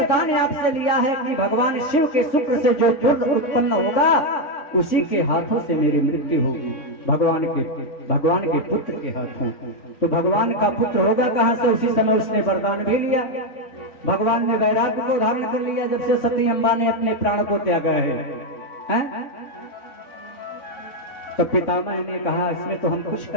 आपसे लिया है कि भगवान शिव के शुक्र से जो दुर्द उत्पन्न होगा उसी के हाथों से मेरी मृत्यु होगी, भगवान के पुत्र के हाथों। तो भगवान का पुत्र होगा कहां से? उसी समय उसने वरदान भी लिया। भगवान ने वैराग्य को धारण कर लिया जब से सती अम्बा ने अपने प्राण को त्यागा है? तो पितामह ने कहा, इसमें तो हम कुछ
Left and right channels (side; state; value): right; late; 3.5 ms